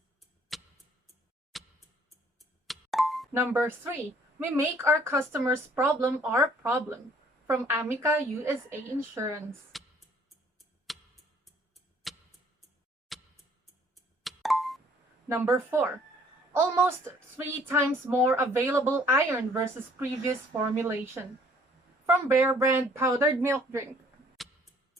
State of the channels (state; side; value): normal; both; correlation 0.58